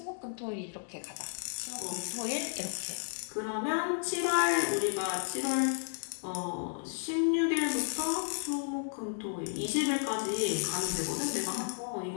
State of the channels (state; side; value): silent; right; digital silence